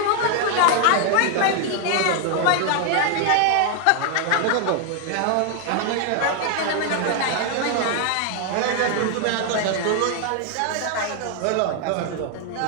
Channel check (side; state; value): both; different; correlation 0.00